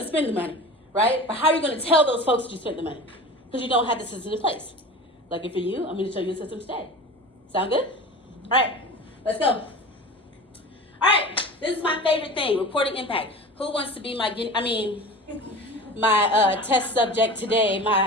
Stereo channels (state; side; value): normal; both; correlation 0.35